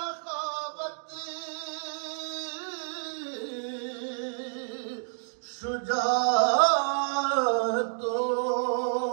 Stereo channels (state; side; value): silent; left; digital silence